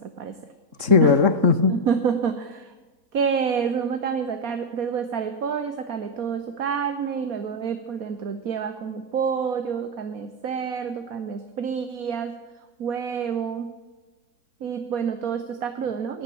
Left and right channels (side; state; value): left; late; 3.7 ms